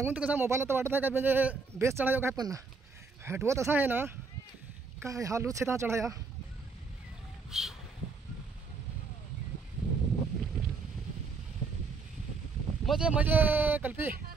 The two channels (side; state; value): left; quieter; 4.7 dB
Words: तर कसा मोबाईलला तर वाटत आहे काय म्हणजे बेस चढायो काय पण हटवत असा आहे ना काय हा लूच आहे चढाया मजे मजे कल्पी